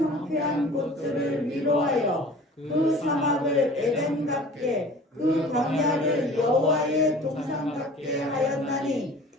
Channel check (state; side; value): normal; both; correlation 0.45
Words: 황폐한 곳들을 위로하여 그 사막을 에덴 같게 그 광야를 여호와의 동산 같게 하였나니